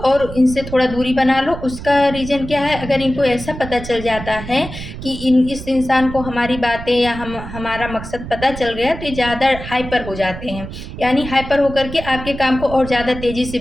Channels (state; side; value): noise; right; rumble, 10 dB below the sound